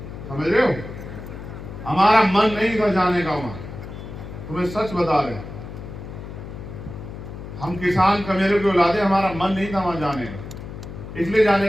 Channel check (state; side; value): noise; left; hum, 11 dB below the sound